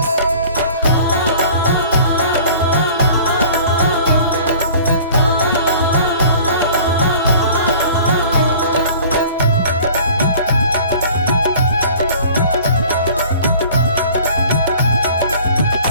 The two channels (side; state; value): both; inverted; correlation -0.47